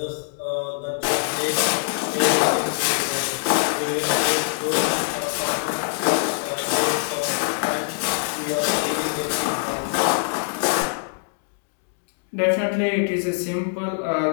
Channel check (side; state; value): right; silent; digital silence